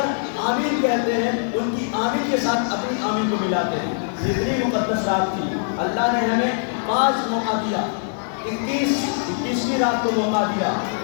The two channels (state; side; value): silent; right; 59 dB below the other